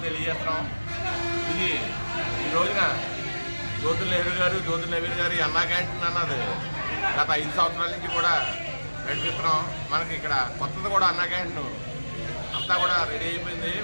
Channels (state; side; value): inverted; both; correlation -1.00